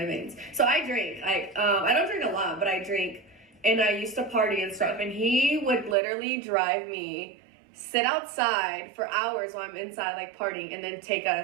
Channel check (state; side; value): drops out; left; at 6.0 s